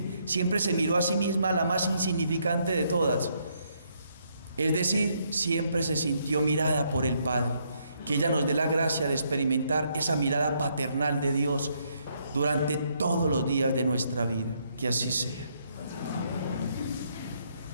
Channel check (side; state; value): both; inverted; correlation -0.73